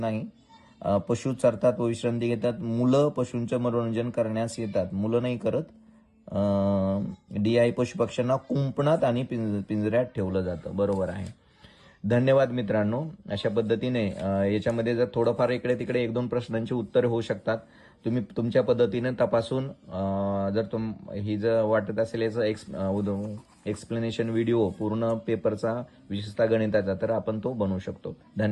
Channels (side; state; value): both; identical; correlation 1.00